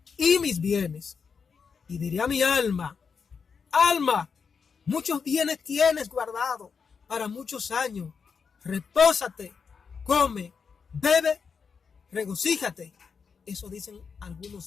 y mis bienes. Y diré a mi alma, alma, muchos bienes tienes guardado para muchos años. Repósate, come, bebe, regocíjate. Eso dicen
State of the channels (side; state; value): right; quieter; 5.8 dB